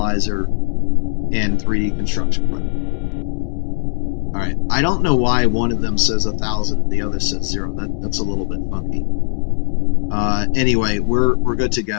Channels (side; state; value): right; silent; digital silence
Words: and 3D construction printer. Alright, I don't know why one of them says 1,000 and the other says 0. That's a little bit funky. Anyway, we're good to